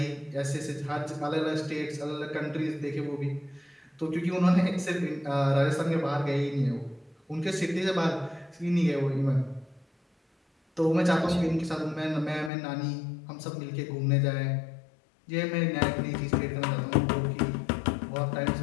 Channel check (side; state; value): right; drops out; at 12.5 s